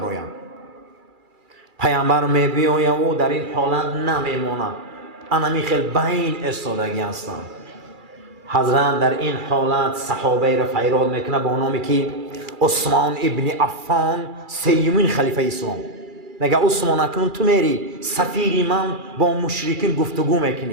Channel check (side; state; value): left; late; 2.4 ms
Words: پیامبر میبیاید او در این حالت نمیمونه، انمی خیلی بین استادگی هستند. حضرت در این حالت صحابه را فیراد میکنه با نامی که عثمان ابن عفان سیمین خلیفه اسلام. میگه عثمان اکنون تو میری سفیری من با مشرکین گفتگو